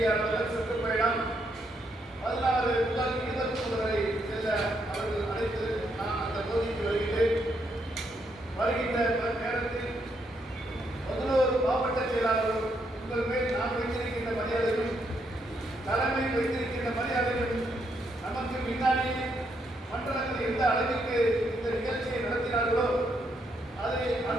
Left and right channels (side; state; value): both; normal; correlation 0.76